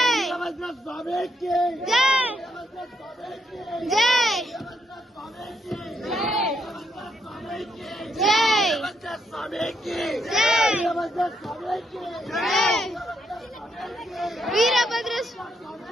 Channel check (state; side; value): normal; both; correlation 0.77